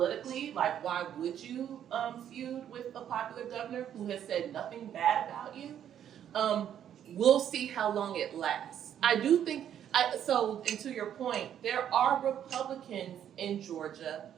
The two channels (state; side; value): quieter; left; 9.9 dB